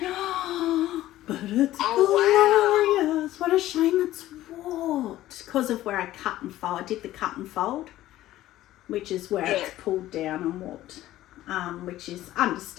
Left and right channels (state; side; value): quieter; right; 14.7 dB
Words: But it's glorious. Wow. What a shame it's warped. Because of where I cut and fold. I did the cut and fold, which is where it's pulled down and warped, which is